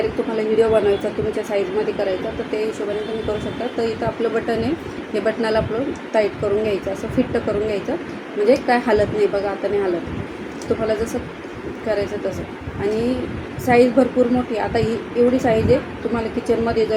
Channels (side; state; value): both; identical; correlation 1.00